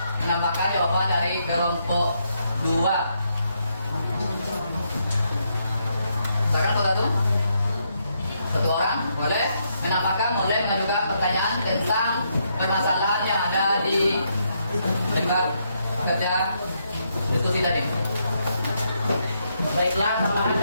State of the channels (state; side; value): inverted; both; correlation -0.77